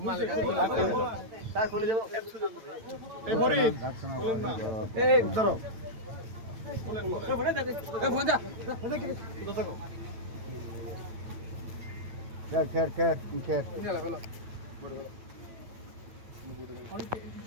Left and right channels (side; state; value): left; late; 8.9 ms